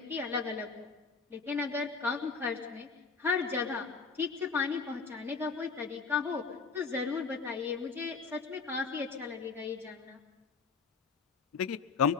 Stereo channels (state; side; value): quieter; right; 5.0 dB